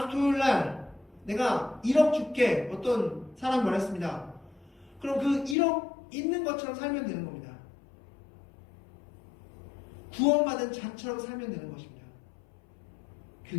주 토요일날 내가 1억 줄게, 어떤 사람이 말했습니다. 그럼 그 1억 있는 것처럼 살면 되는 겁니다. 구원받은 자처럼 살면 되는 것입니다.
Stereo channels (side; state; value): right; drops out; at 5.6 s